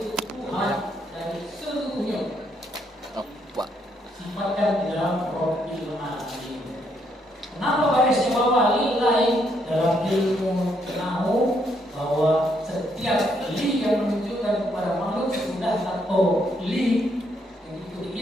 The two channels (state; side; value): normal; both; correlation 0.74